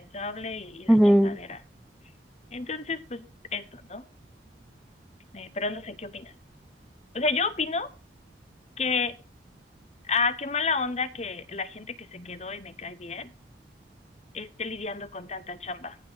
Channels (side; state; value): both; normal; correlation 0.51